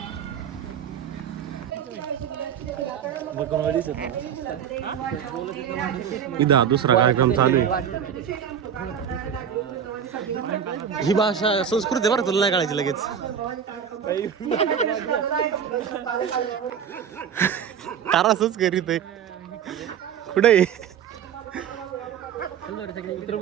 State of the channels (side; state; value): left; quieter; 8.2 dB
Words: इधर दुसरा कार्यक्रम चालू आहे. ही भाषा संस्कृती आहे बरं, तुला नाही कळायची लगेच. तारासच करीत आहे. कुठे